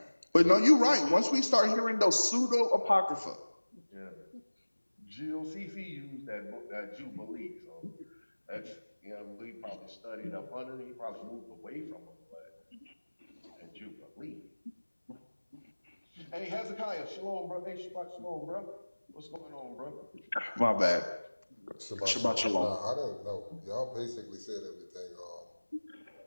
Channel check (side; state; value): both; inverted; correlation -1.00